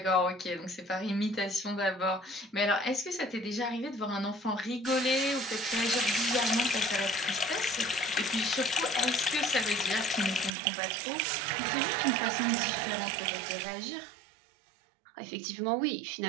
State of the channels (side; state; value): left; drops out; at 10.5 s